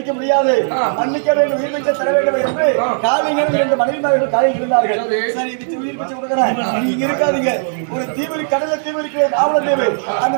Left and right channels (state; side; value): silent; left; digital silence